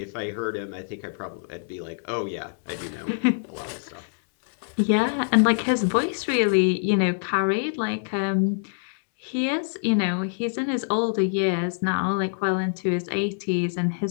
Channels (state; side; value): silent; right; digital silence